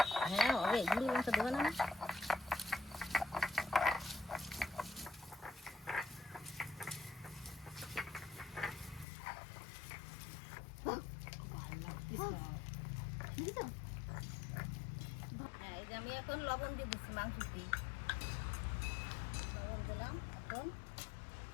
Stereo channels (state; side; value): drops out; right; at 9.1 s